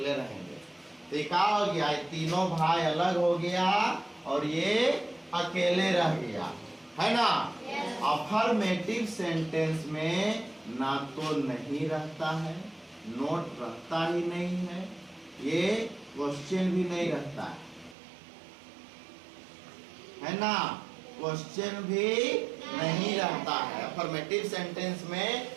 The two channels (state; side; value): drops out; left; at 17.9 s